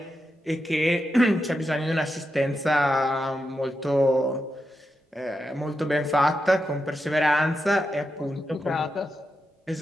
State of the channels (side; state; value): both; normal; correlation 0.87